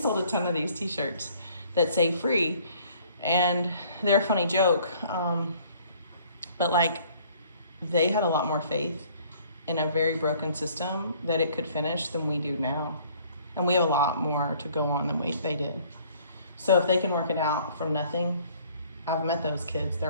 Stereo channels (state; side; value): inverted; both; correlation -0.57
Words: a ton of these t-shirts that say free, and they're a funny joke, but like they had a lot more faith in a very broken system that it could finish than we do now, and we have a lot more to go on than they did. So if they can work it out from nothing, I've met those kids,